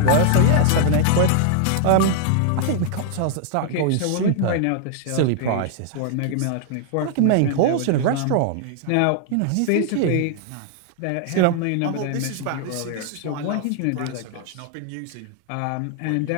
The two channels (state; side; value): different; both; correlation 0.00